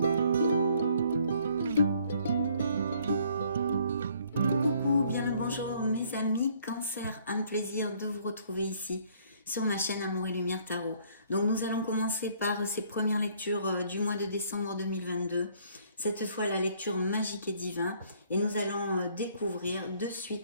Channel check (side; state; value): both; inverted; correlation -0.62